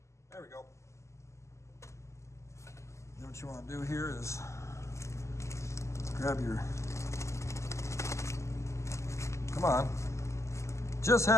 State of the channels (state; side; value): late; right; 0.14 ms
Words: There we go. Then what you want to do here is grab your, come on, just